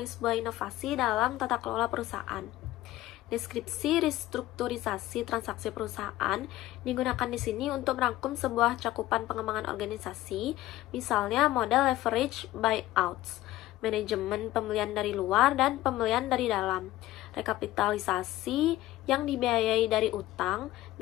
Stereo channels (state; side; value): quieter; right; 15.9 dB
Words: sebuah inovasi dalam tata kelola perusahaan. Deskripsi restrukturisasi transaksi perusahaan digunakan di sini untuk merangkum sebuah cakupan pengembangan organisasi, misalnya model leverage buyouts, manajemen pembelian dari luar dan pembelian dari dalam, rekapitalisasi yang dibiayai dari utang